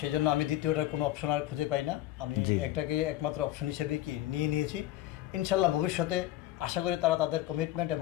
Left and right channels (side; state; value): right; quieter; 14.6 dB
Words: সেই জন্য আমি দ্বিতীয়টার কোনো অপশন আর খুঁজে পাই না। আমি জি। একটাকে একমাত্র অপশন হিসেবে কি নিয়েছি। ইনশাল্লাহ ভবিষ্যতে আশা করি তারা তাদের কমিটমেন্ট